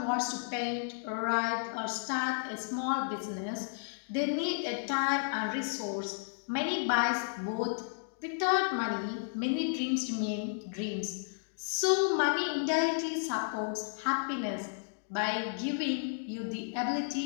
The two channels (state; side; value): silent; right; digital silence